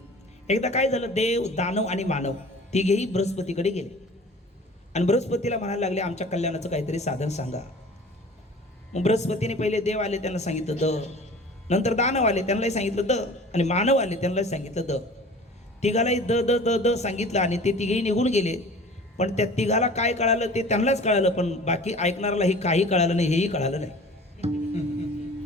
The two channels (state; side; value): normal; both; correlation 0.43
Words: एकदा काय झालं, देव, दानव आणि मानव तिघेही बृहस्पतीकडे गेले आणि बृहस्पतीला म्हणायला लागले आमच्या कल्याणाचं काहीतरी साधन सांगा. मग बृहस्पतीने पहिले देव आले त्यांना सांगितलं द, नंतर दानव आले त्यांनाही सांगितलं द, आणि मानव आले त्यांनाही सांगितलं द. तिघालाही द द द द सांगितलं आणि ते तिघेही निघून गेले. पण त्या तिघाला काय कळालं ते त्यांनाच कळालं, पण बाकी ऐकणाऱ्याला हे काही कळालं नाही, हेही कळालं नाही.